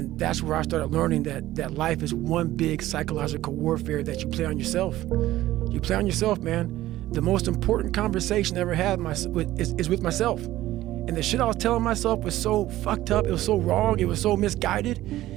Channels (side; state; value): left; quieter; 15.2 dB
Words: that's where I started learning that life is one big psychological warfare that you play on yourself. You play on yourself, man. The most important conversation I ever had is with myself. And the shit I was telling myself was so fucked up, it was so wrong, it was so misguided.